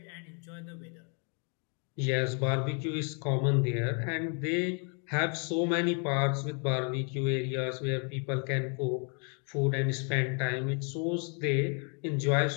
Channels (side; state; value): right; quieter; 38.8 dB